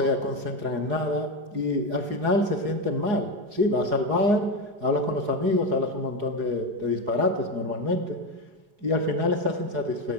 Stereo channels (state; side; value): late; left; 4.8 ms